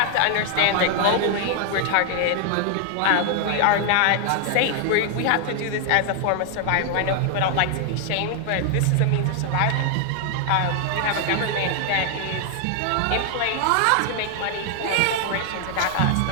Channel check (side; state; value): both; different; correlation 0.00